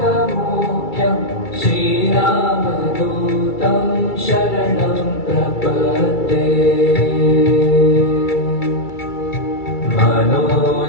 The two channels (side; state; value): right; late; 2.3 ms